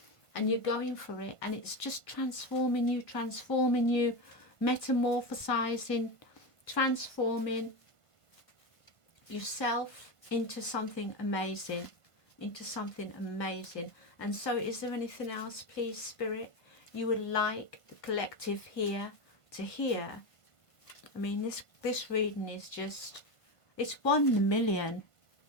and you're going for it, and it's just transforming you, metamorphosizing, transforming yourself into something amazing, And so is there anything else, please, Spirit, you would like the collective here to hear? I mean, this reading is just, it's 1 in a million.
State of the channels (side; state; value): right; late; 1.4 ms